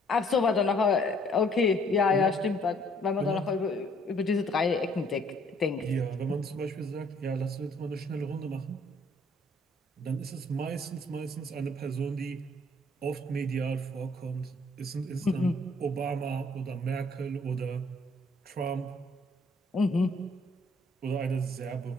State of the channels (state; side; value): normal; both; correlation 0.62